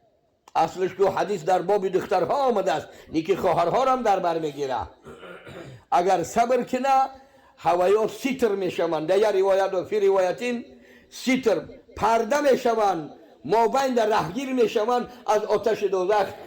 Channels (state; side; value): identical; both; correlation 1.00